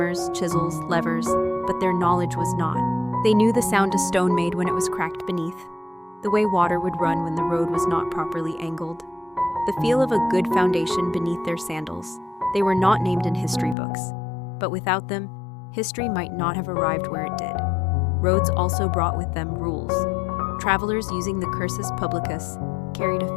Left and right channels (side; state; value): right; drops out; at 13.8 s